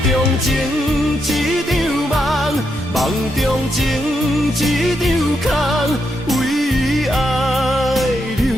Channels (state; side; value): normal; both; correlation 0.81